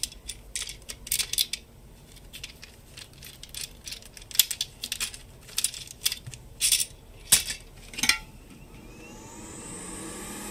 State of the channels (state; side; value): identical; both; correlation 1.00